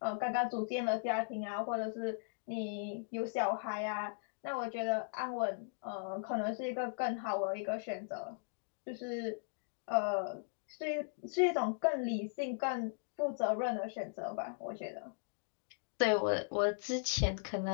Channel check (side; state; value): right; silent; digital silence